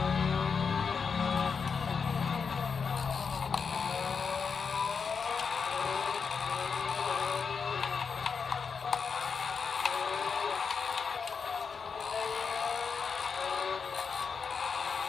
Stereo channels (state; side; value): quieter; right; 5.7 dB